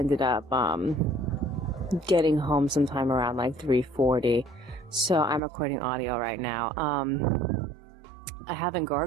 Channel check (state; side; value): drops out; left; at 5.4 s